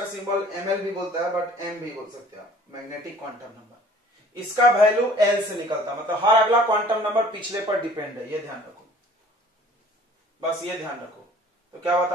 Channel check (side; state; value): both; normal; correlation 0.51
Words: सिंबल ml भी बोलता है, बट m भी बोल सकते हैं आप। मैग्नेटिक क्वांटम नंबर, इसका वैल्यू l से निकलता है, मतलब हर अगला क्वांटम नंबर पिछले पर डिपेंड है, ये ध्यान रखो, बस ये ध्यान रखो। तो क्या